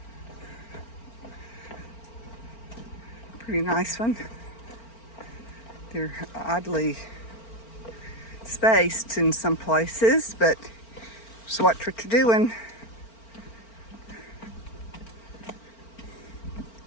Pretty nice one. They're oddly spaced in some places, but it's what you're doing.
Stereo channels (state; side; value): late; right; 4.4 ms